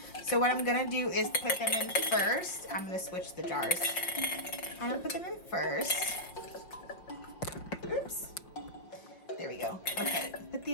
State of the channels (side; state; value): right; late; 5.6 ms